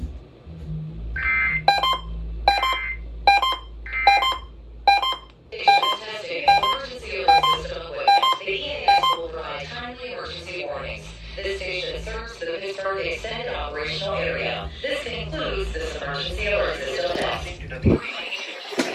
Testing emergency alert system equipment. The EAS will provide timely emergency warnings. This station serves the Pittsburgh Extended Operational Area. This concludes this emergency alert system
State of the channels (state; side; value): identical; both; correlation 1.00